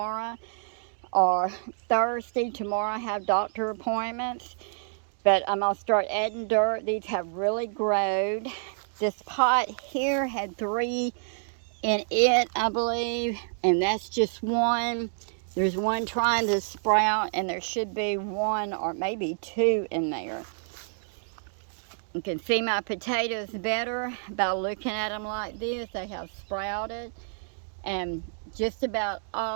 or Thursday. Tomorrow I have doctor appointments, but I'm gonna start adding dirt. These have really grown. This pot here had 3 in it, I believe, and that's just 1. There's 1 trying to sprout, and there should be 1 or maybe 2 in there. You can see my potatoes better by looking at them like this. They have sprouted, and just about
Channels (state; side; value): silent; left; digital silence